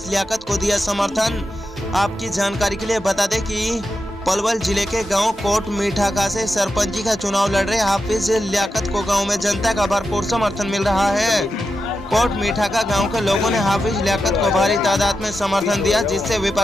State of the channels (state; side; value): normal; both; correlation 0.89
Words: लियाकत को दिया समर्थन। आपकी जानकारी के लिए बता दें कि पलवल जिले के गांव कोट मीठाका से सरपंची का चुनाव लड़ रहे हाफिज लियाकत को गांव में जनता का भरपूर समर्थन मिल रहा है। कोट मीठाका गांव के लोगों ने हाफिज लियाकत को भारी तादाद में समर्थन दिया, जिससे